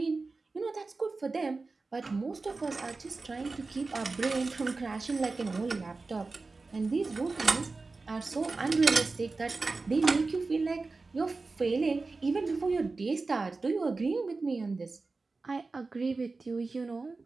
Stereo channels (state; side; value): quieter; left; 3.8 dB